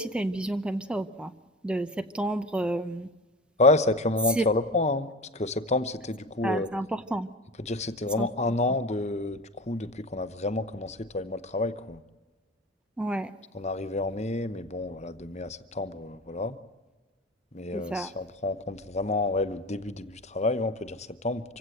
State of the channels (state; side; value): normal; both; correlation 0.32